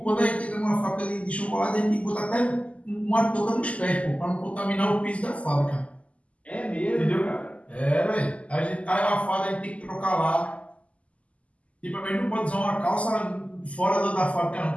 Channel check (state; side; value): late; right; 0.064 ms